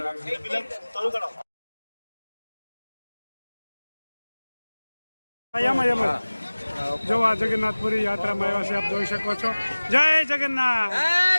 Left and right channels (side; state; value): both; inverted; correlation -1.00